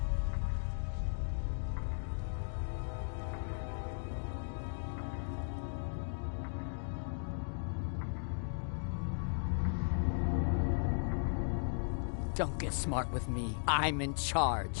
Don't get smart with me. I'm in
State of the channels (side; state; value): right; silent; digital silence